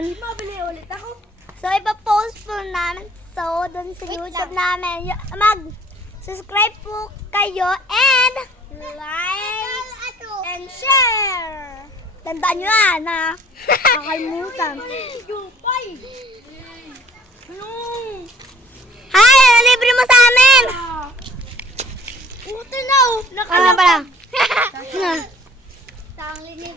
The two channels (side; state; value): both; normal; correlation 0.55